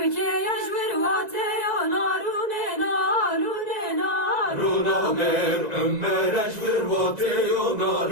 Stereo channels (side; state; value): left; late; 2.0 ms